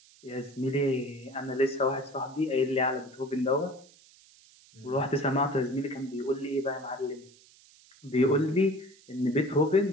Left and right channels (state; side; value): noise; right; hiss, 26 dB below the sound